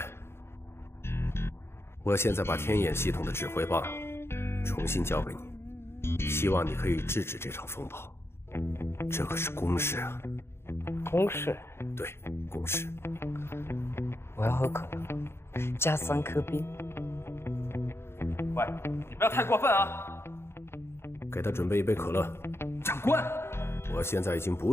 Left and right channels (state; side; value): late; right; 0.12 ms